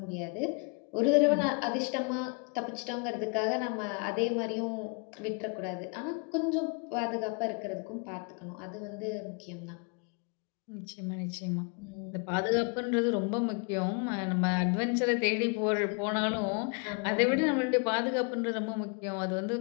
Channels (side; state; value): right; quieter; 34.8 dB